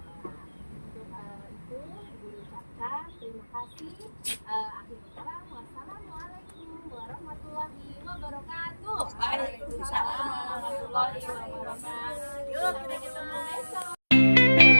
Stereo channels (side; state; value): both; inverted; correlation -1.00